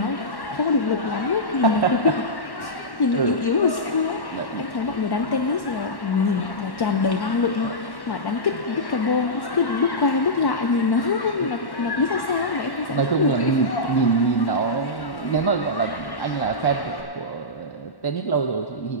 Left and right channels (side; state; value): right; late; 1.1 ms